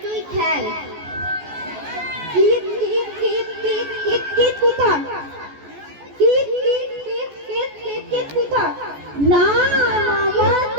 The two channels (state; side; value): late; left; 14 ms